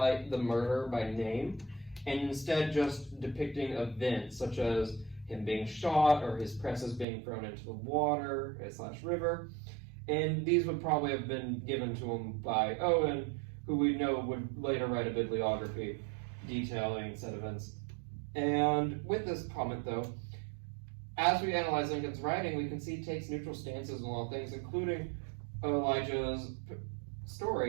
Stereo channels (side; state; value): left; drops out; at 7.1 s